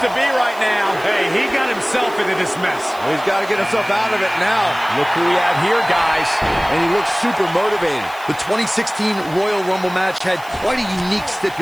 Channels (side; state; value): right; noise; hiss, 22 dB below the sound